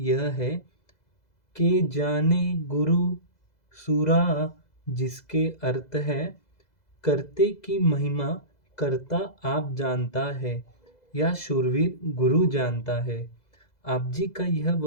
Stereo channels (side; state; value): right; late; 2.0 ms